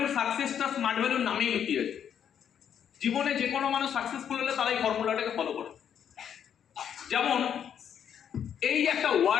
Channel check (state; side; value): quieter; right; 8.7 dB